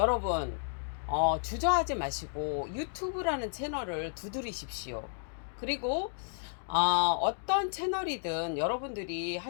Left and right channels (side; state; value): right; silent; digital silence